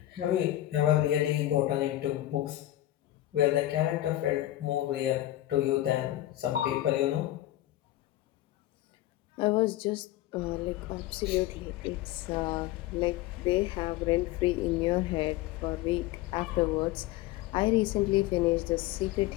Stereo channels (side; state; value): right; quieter; 14.8 dB